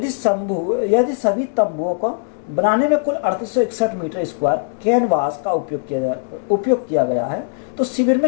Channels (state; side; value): silent; right; digital silence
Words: सभी तंबुओं को बनाने में कुल 3861 मीटर स्क्वायर कैनवास का उपयोग किया गया है, तो शिविर